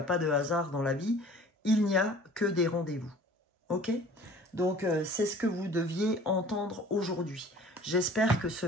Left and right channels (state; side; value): normal; both; correlation 0.47